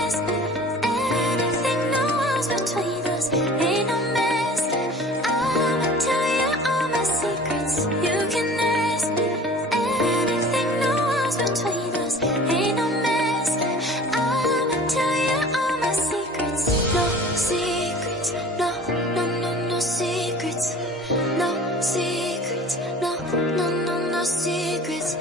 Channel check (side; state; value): both; normal; correlation 0.44